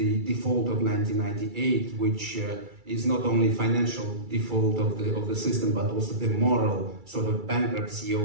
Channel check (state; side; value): late; left; 2.3 ms